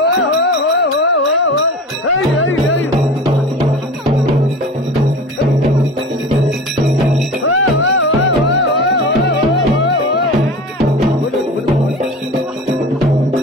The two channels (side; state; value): both; normal; correlation 0.34